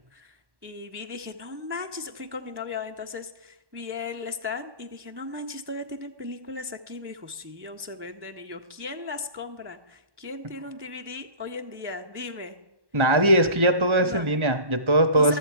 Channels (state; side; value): late; left; 1.1 ms